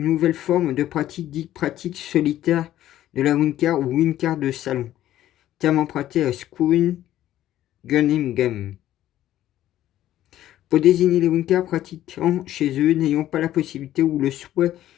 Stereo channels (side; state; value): right; quieter; 13.0 dB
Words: nouvelle forme de pratique dite pratique solitaire de la Wicca ou Wicca de salon, terme emprunté à Squin Gunningham, pour désigner les Wicca pratiquant chez eux n'ayant pas la possibilité ou le souhait